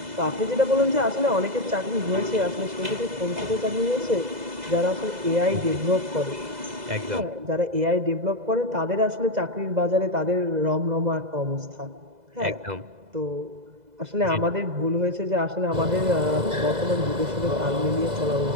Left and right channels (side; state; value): left; late; 2.0 ms